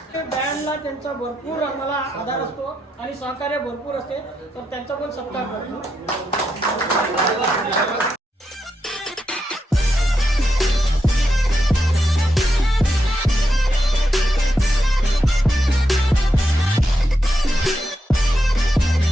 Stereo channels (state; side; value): normal; both; correlation 0.83